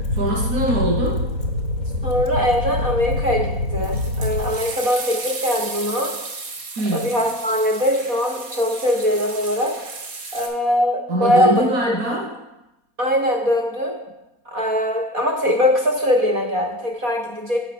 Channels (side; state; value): left; late; 4.2 ms